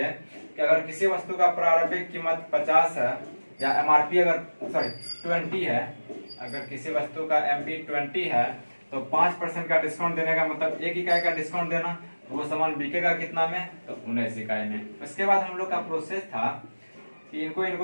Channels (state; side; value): inverted; both; correlation -1.00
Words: कि अगर किसी वस्तु का प्रारंभिक कीमत 50 है या एमआरपी अगर 20 है, अगर किसी वस्तु का एमपी 20 है, तो 5% का डिस्काउंट देने का मतलब 1 इकाई का डिस्काउंट देना, तो वो सामान बिकेगा कितना में, तो 19 इकाई में। उसके बाद हम लोग का प्रोसेस था कि